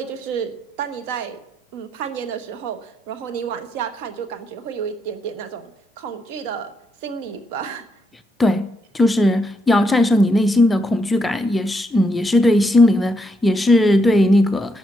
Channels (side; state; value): both; normal; correlation 0.79